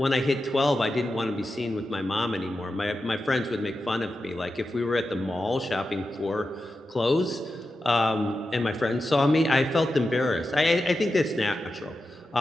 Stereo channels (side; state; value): both; normal; correlation 0.91